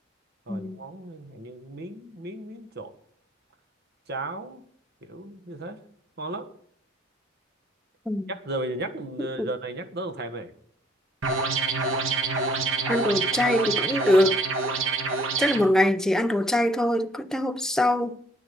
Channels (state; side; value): normal; both; correlation 0.62